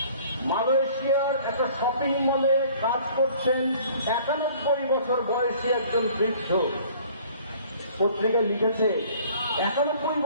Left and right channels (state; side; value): inverted; both; correlation -0.53